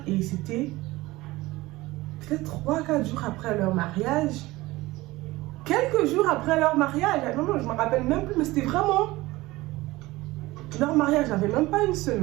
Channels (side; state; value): left; quieter; 19.4 dB